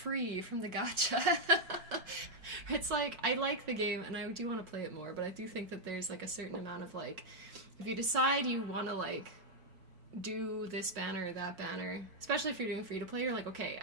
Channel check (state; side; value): late; left; 4.5 ms